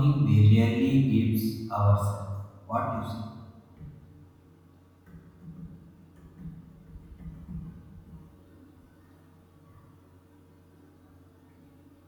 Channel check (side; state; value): both; identical; correlation 1.00